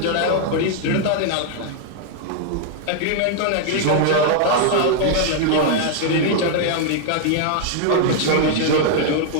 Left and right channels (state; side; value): different; both; correlation 0.00